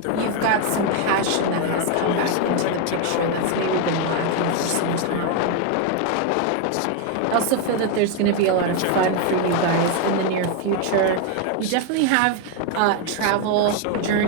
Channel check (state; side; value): different; both; correlation 0.01